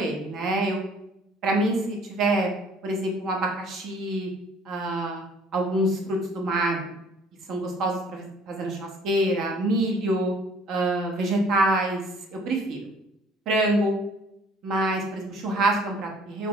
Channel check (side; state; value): both; normal; correlation 0.56